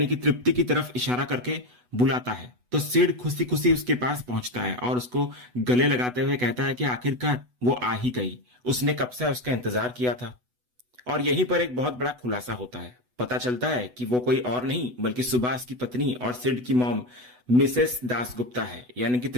कि तृप्ति की तरफ इशारा करके बुलाता है, तो सिड खुशी खुशी उसके पास पहुंचता है और उसको गले लगाते हुए कहता है कि आखिरकार वो आ ही गई, उसने कब से उसका इंतजार किया था। और यहीं पर एक बहुत बड़ा खुलासा होता है। पता चलता है कि वो कोई और नहीं बल्कि सुभाष की पत्नी और सिड की मॉम मिसेस दासगुप्ता है, यानी कि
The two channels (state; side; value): late; left; 8.1 ms